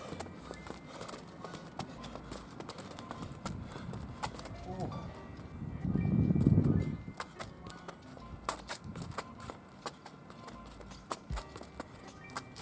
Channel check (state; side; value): identical; both; correlation 1.00